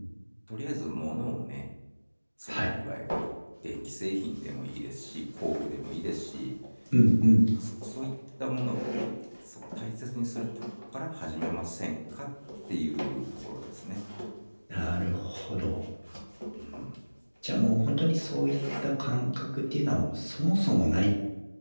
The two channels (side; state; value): both; inverted; correlation -1.00